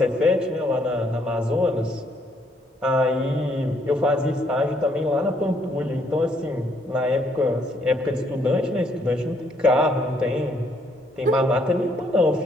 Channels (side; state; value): both; normal; correlation 0.69